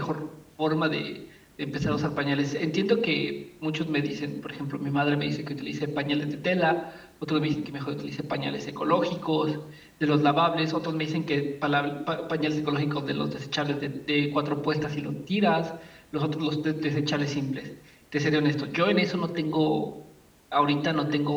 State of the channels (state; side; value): identical; both; correlation 1.00